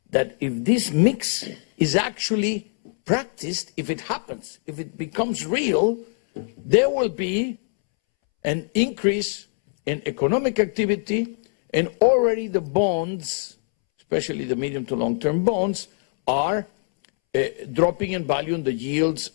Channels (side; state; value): right; silent; 63 dB below the other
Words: that if this mix is actually practiced, if it happens, if it becomes real, there will be an increase in economic activity, and already the bonds, especially the medium to long-term bonds, are dropping in value and the yields